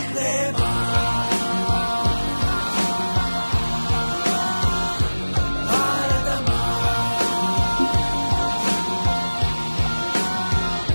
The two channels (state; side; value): inverted; both; correlation -1.00